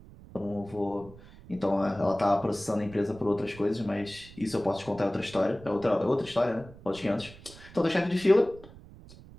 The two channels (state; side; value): noise; right; rumble, 19 dB below the sound